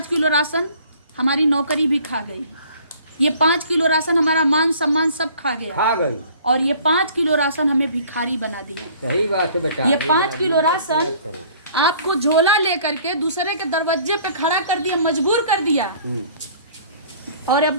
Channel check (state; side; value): inverted; both; correlation -0.53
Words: किलो राशन हमारी नौकरी भी खा गई। ये 5 किलो राशन हमारा मान सम्मान सब खा गई। और ये 5 किलो राशन हमें भिखारी बना दिया। सही बात है बेटा। ये 5 किलो राशन आपको झोला लेकर के दूसरे के दरवाजे पे खड़ा कर दिया, मजबूर कर दिया। और अब